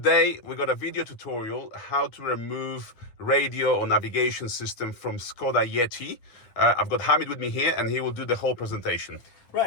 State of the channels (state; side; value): late; right; 9.7 ms